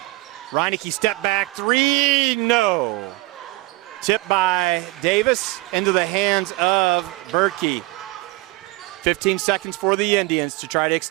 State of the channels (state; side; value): quieter; left; 21.4 dB